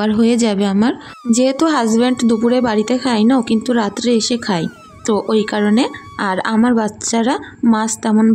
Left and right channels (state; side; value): identical; both; correlation 1.00